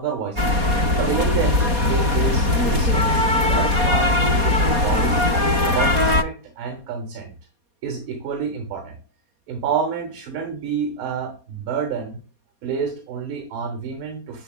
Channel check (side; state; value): left; late; 4.2 ms